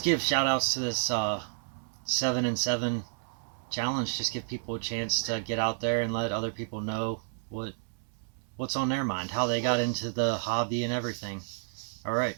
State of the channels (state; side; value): silent; left; 57 dB below the other